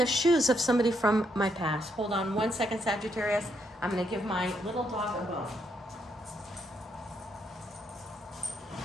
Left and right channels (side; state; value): both; normal; correlation 0.76